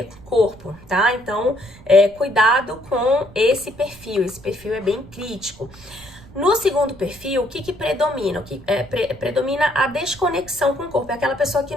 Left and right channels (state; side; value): noise; right; rumble, 21 dB below the sound